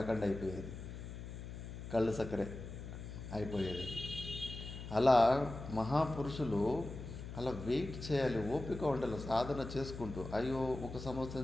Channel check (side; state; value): left; noise; hum, 9 dB below the sound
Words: అయిపోయేది, కళ్ళు చక్కెరే అయిపోయేది. అలా మహాపురుషులు అలా వెయిట్ చేయాలి, ఓపిక ఉండాలి, సాధన చేసుకుంటూ. అయ్యో 1